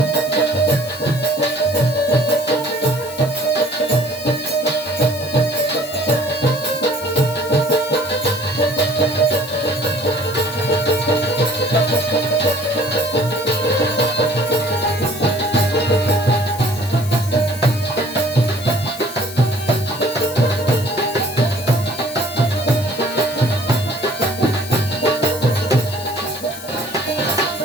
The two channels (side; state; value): left; noise; hiss, 14 dB below the sound